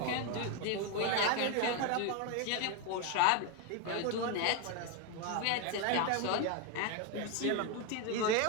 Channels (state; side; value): different; both; correlation 0.02